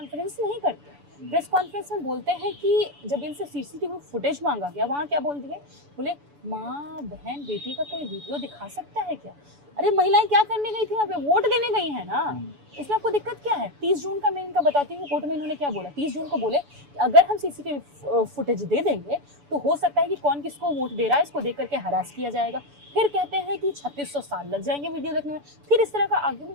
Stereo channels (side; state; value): left; late; 7.0 ms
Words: नहीं करते। प्रेस कॉन्फ्रेंस में बोलते हैं कि जब इनसे सीसीटीवी फुटेज मांगा गया, वहाँ क्या बोल दिए? बोले माँ बहन बेटी का कोई वीडियो दिखा सकता है क्या? अरे महिलाएं क्या करने गई थी वहाँ पे? वोट देने गई है ना। इसमें आपको दिक्कत क्या है? 30 जून का मैं इनका बताती हूँ, कोर्ट में इन्होंने क्या बोला। 30 जून को बोले कि अगर हम सीसीटीवी फुटेज दे देंगे तो हो सकता है कि कौन किसको वोट दे रहा है इसको देख करके हरास किया जाएगा। फिर कहते हैं कि 3600 साल लग जाएंगे वीडियो देखने में। फिर इस तरह का